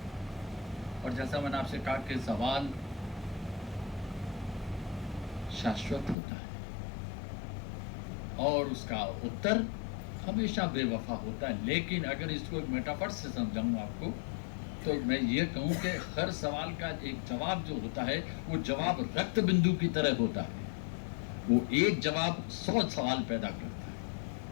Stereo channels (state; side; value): drops out; right; at 6.2 s